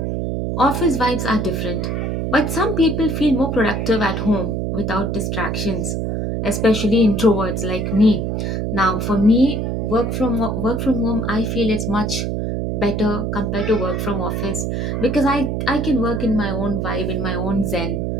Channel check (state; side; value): noise; right; hum, 1 dB below the sound